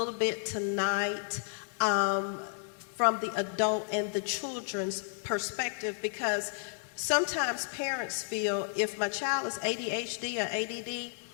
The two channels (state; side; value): silent; right; digital silence